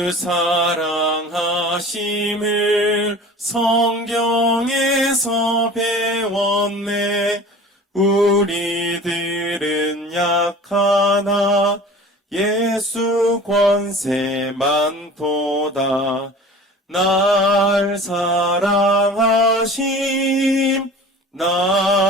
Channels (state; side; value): normal; both; correlation 0.41